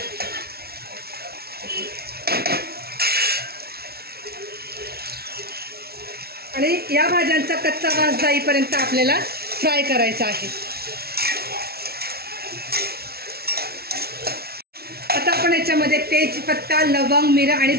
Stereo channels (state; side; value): late; left; 0.45 ms